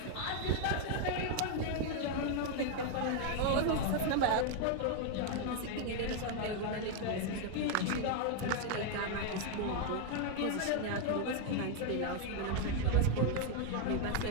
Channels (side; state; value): both; different; correlation 0.00